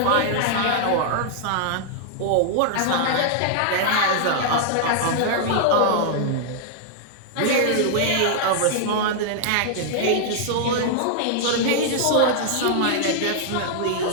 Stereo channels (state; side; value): different; both; correlation -0.01